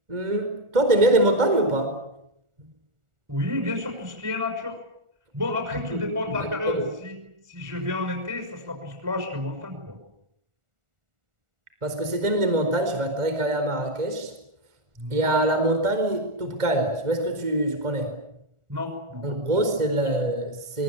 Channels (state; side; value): late; left; 1.4 ms